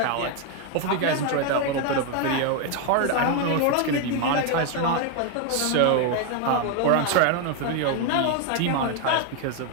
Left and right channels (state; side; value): different; both; correlation 0.01